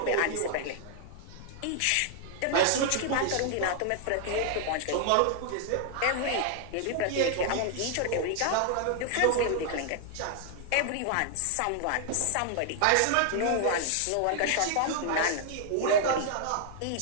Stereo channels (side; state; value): both; different; correlation 0.00